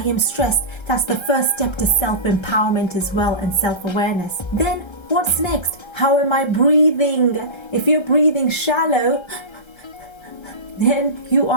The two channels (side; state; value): right; late; 1.3 ms